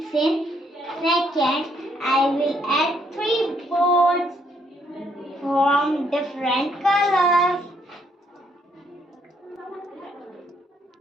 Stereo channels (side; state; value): both; normal; correlation 0.70